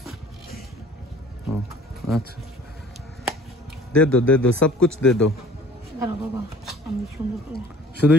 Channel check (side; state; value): both; normal; correlation 0.50